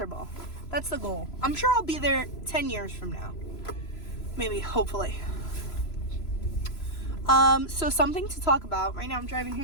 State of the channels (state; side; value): late; right; 3.0 ms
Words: That's the goal. I'm sure I'll be there 10 years from now. Maybe, hopefully. So something to talk about. Right now I'm driving